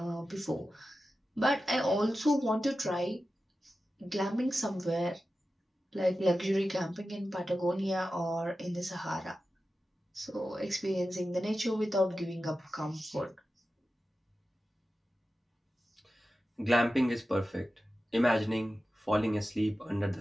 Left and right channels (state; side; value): normal; both; correlation 0.93